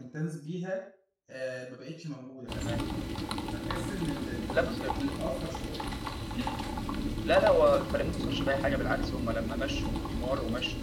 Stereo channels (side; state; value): both; identical; correlation 1.00